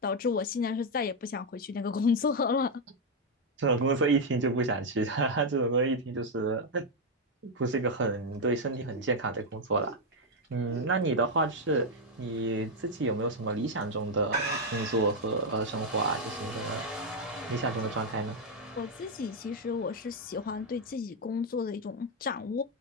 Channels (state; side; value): normal; both; correlation 0.02